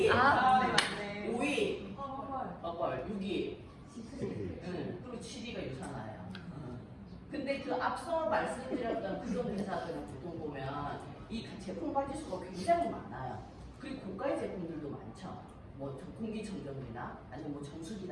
맞네. 5위 허벌, 6위 그리고 7위가 유산화예요. 근데 그 앞서 말씀드렸던 그런 회사들은 보통 보면 이 제품 가지수가 굉장히 많아요. 그리고 고가의 제품들도 많죠. 뭐 공기청정기나 아니면 뭐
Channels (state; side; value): identical; both; correlation 1.00